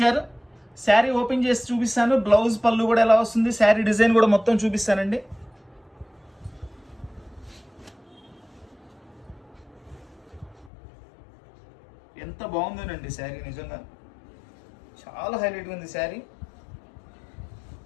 శారీ ఓపెన్ చేసి చూపిస్తాను. బ్లౌజ్ పళ్ళు కూడా ఎలా వస్తుంది, శారీ డిజైన్ కూడా మొత్తం చూపిస్తానండి. ఎంత బాగుందోనండి శారీ, నిజంగా చాలా హైలైట్గా ఉంది శారీ.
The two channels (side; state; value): right; drops out; at 10.7 s